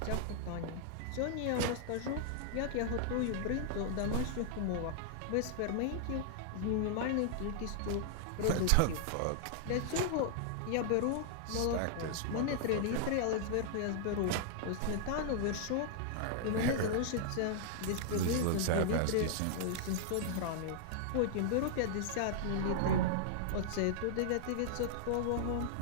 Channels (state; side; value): different; both; correlation -0.01